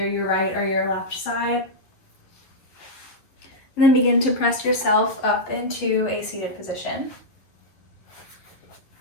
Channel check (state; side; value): late; right; 11 ms